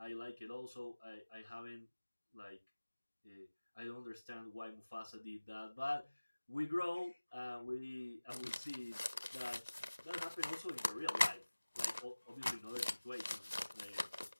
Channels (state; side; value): inverted; both; correlation -1.00